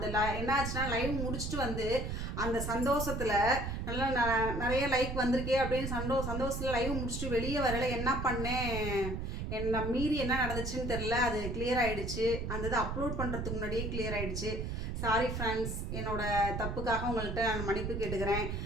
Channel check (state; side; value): noise; right; rumble, 3 dB below the sound